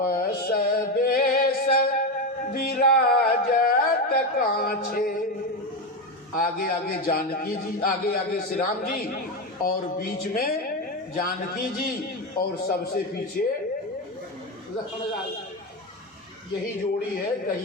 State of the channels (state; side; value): normal; both; correlation 0.14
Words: बेश विराजत काछे। आगे आगे जानकी जी, आगे आगे श्री राम जी, और बीच में जानकी जी, और सबसे पीछे लक्ष्मण लाल। यही जोड़ी है।